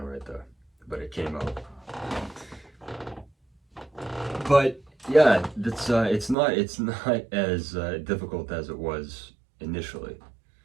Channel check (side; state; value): left; drops out; at 6.4 s